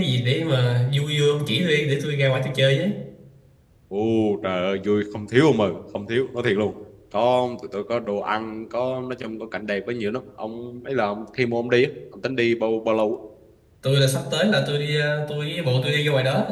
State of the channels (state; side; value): identical; both; correlation 1.00